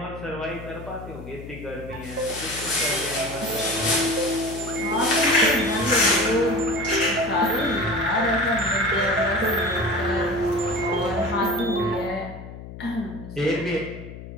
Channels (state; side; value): noise; left; hum, 13 dB below the sound